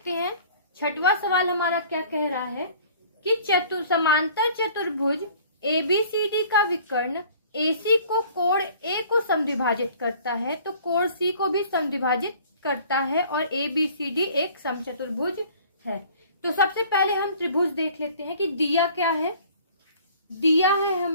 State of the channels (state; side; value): inverted; both; correlation -0.51